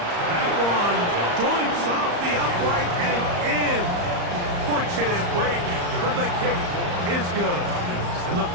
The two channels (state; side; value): late; left; 34 ms